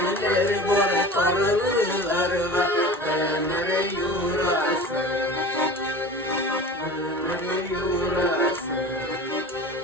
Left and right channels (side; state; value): both; normal; correlation 0.37